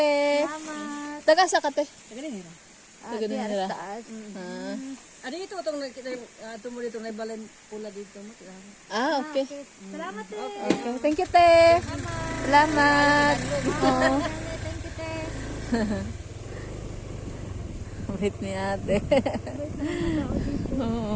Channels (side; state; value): both; identical; correlation 1.00